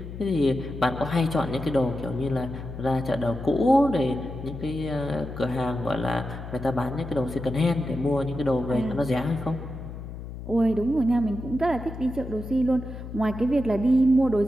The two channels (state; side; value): noise; left; hum, 10 dB below the sound